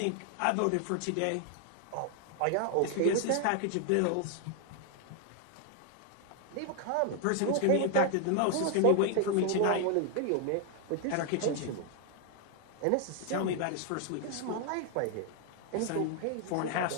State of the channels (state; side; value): different; both; correlation 0.00